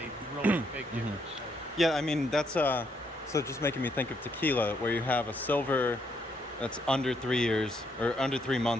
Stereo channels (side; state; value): both; normal; correlation 0.74